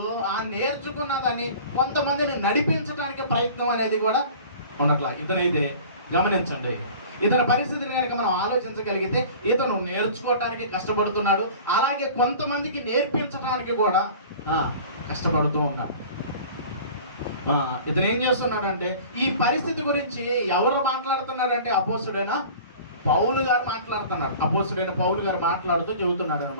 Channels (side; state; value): both; inverted; correlation -0.42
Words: నేర్చుకున్న దాన్ని కొంతమందిని నడిపించడానికి ప్రయత్నం అనేది కూడా ఉండట్లా. ఇతనైతే గమనించండి, ఇతని పరిస్థితిని కనుక మనం ఆలోచించగలిగితే ఇతను నేర్చుకోవడానికి కష్టపడుతున్నాడు, అలాగే కొంతమందికి నేర్పించడానికి కూడా కష్టపడుతూ ఉన్నాడు. ఇతను ఏం చేస్తున్నాడంటే ఈ పరిస్థితి గురించి ఎవరు మాట్లాడుతున్నాడంటే అపోస్తుడైన పౌలు గారు మాట్లాడుతున్నాడు. అపోస్తుడైన పౌలు గారు మాట్లాడుతూ చెబుతున్నాడు